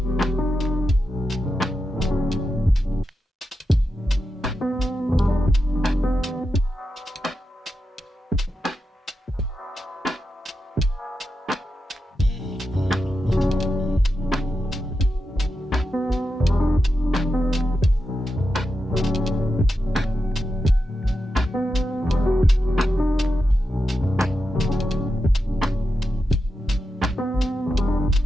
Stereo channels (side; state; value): both; normal; correlation 0.88